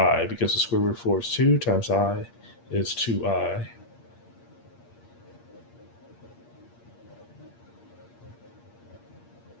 because the square root of 4 is 2 times I is 2i.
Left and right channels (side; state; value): right; late; 8.6 ms